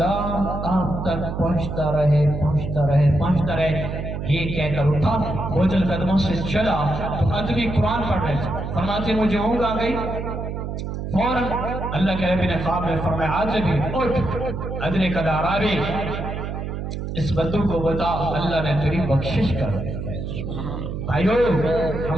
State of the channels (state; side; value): noise; right; hum, 5 dB below the sound